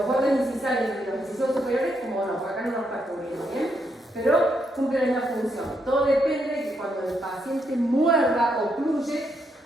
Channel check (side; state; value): both; normal; correlation 0.78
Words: bordes incisales de los incisivos superiores, como no, acá no nos está cubriendo, bien, pero cumple la misma función. Todo depende de que cuando el paciente muerda o ocluye,